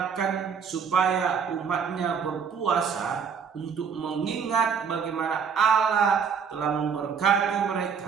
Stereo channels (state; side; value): quieter; left; 6.6 dB